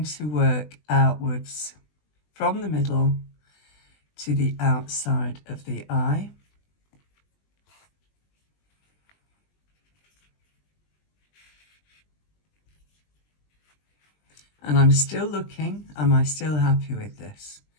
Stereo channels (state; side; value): late; right; 20 ms